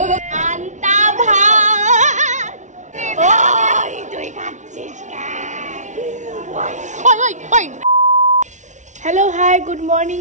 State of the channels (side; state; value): left; late; 0.35 ms